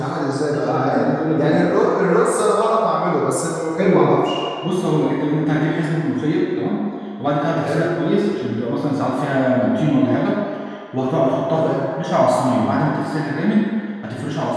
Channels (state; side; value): identical; both; correlation 1.00